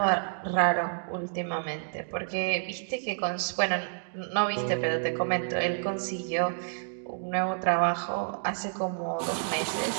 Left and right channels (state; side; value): silent; left; digital silence